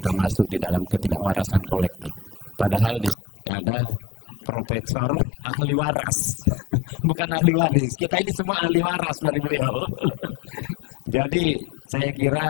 masuk di dalam ketidakwarasan kolektif. Padahal di sini ada profesor ahli waras, bukan ahli waris. Kita ini semua ahli waras dari beliau. Jadi saya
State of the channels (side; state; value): right; drops out; at 3.2 s